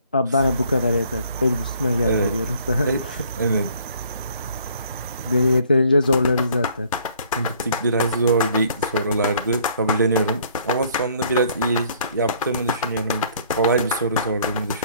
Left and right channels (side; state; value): both; inverted; correlation -0.59